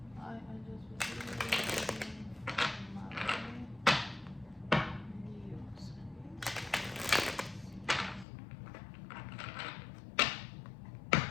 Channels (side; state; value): right; drops out; at 8.2 s